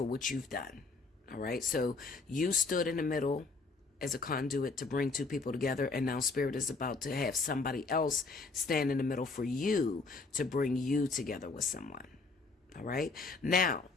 what you've done. All right, so you stood in the middle as a conduit to bring two people together, and now Spirit is about to have somebody else stand in the middle for you to bring you together with someone. All right, now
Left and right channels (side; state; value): right; quieter; 4.0 dB